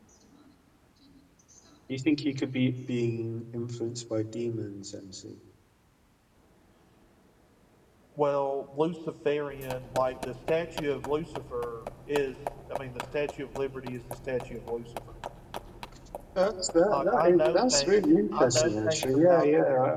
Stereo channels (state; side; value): identical; both; correlation 1.00